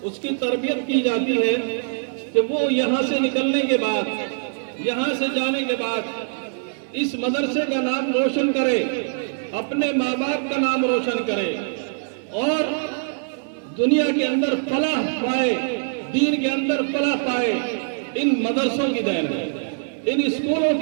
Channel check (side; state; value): left; silent; 63 dB below the other